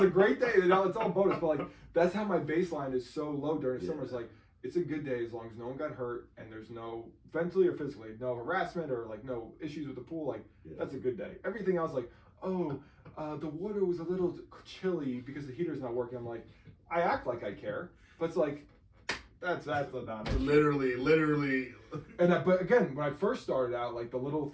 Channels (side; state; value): both; identical; correlation 1.00